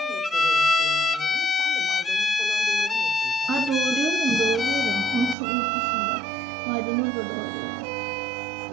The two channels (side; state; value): left; drops out; at 5.4 s